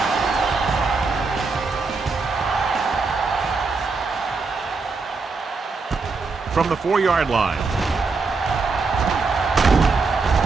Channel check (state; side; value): quieter; left; 4.3 dB